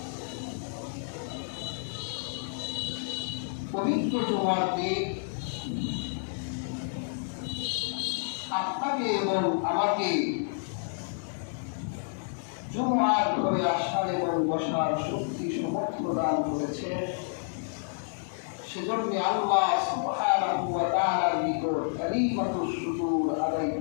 পবিত্র জুমার দিন আপনাকে এবং আমাকে জুমার ঘরে আসার এবং বসার শক্তি সামর্থ্য দান করেছে। সেজন্য আল্লাহ সুবহানাহু ওয়া তাআলার নিকট কালিমাতুশ শুকর আদায়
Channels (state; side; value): silent; right; digital silence